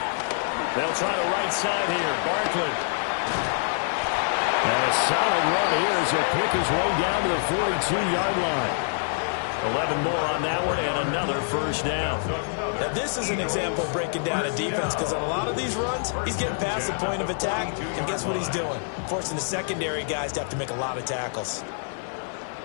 They'll try the right side here. Barkley. And a solid run here as he'll pick his way down to the 42-yard line. 11 more on that one and another first down. Now, this is an example of breaking down a defense because on a lot of these runs, he's getting past the point of attack, and guess what he's doing? Forcing the secondary guys to have to make a lot of tackles.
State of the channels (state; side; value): silent; right; 57 dB below the other